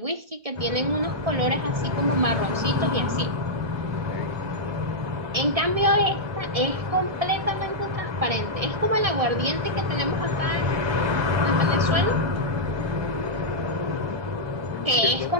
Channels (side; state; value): left; late; 1.7 ms